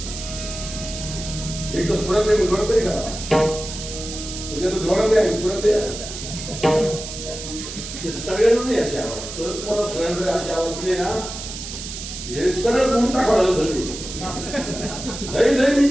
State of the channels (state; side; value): noise; right; hiss, 9 dB below the sound